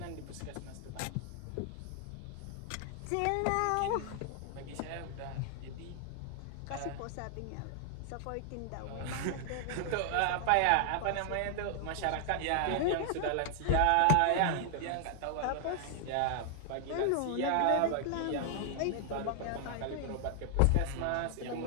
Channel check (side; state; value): both; different; correlation 0.00